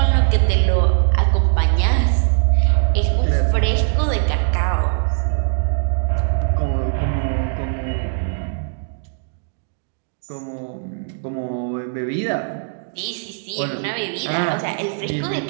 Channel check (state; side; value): silent; left; digital silence